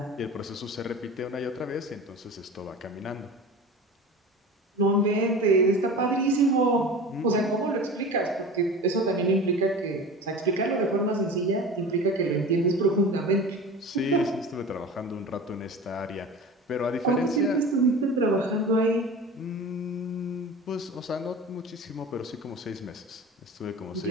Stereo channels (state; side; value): normal; both; correlation 0.35